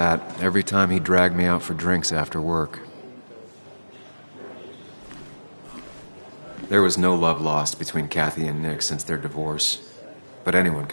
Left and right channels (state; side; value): inverted; both; correlation -1.00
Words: every time he dragged me out for drinks after work. There was no love lost between Kathy and Nick since their divorce, but anyone